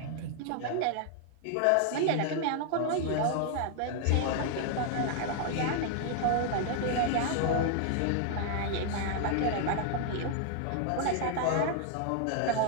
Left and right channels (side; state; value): both; different; correlation 0.00